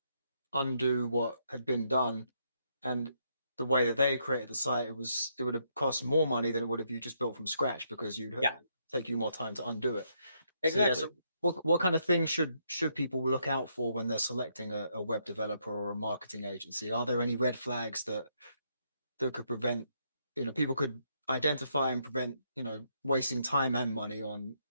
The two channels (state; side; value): inverted; both; correlation -0.75